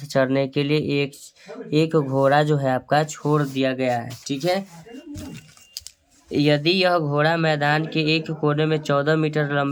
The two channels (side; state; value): both; identical; correlation 1.00